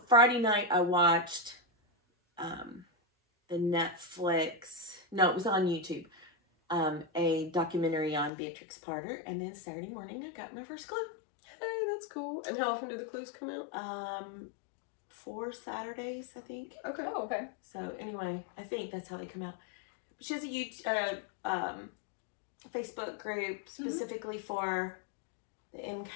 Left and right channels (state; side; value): drops out; right; at 8.3 s